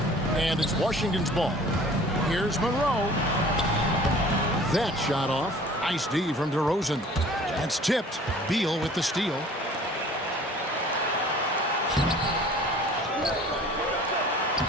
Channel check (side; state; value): both; normal; correlation 0.48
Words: And it's Washington's ball. Here's Monroe. That shot off. Nice D from DeRozan. That's tipped. Beal with the steal.